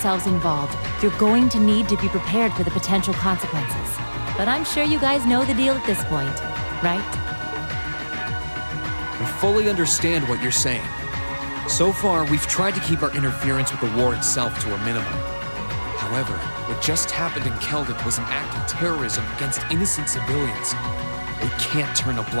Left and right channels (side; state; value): both; inverted; correlation -1.00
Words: involved, you're going to need to be prepared for the potential consequences. But I'm sure you guys know the deal at this point, right? We fully understand what you're saying. So far, we've tried to keep our interference with the war itself to a minimum. However, what just happened in Celdic was an act of terrorism against innocent civilians. We can't turn a